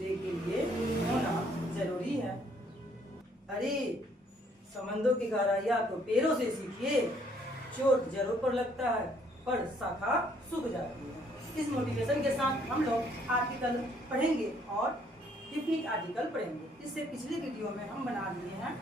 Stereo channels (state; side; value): normal; both; correlation 0.65